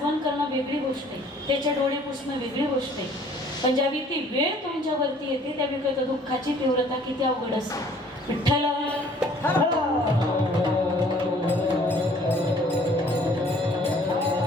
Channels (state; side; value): normal; both; correlation 0.56